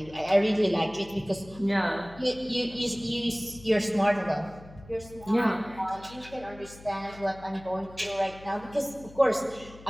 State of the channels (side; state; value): left; noise; hum, 19 dB below the sound